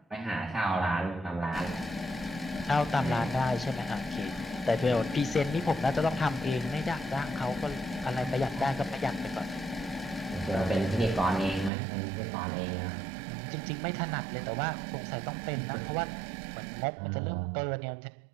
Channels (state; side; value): drops out; left; at 11.7 s